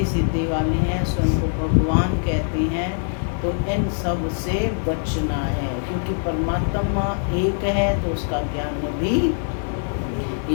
सिद्धि वाले हैं, स्वयं को भगवान कहते हैं, तो इन सब से बचना है, क्योंकि परमात्मा एक है तो उसका ज्ञान भी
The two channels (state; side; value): silent; right; digital silence